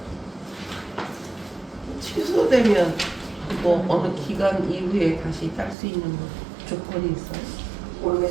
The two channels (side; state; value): left; drops out; at 5.8 s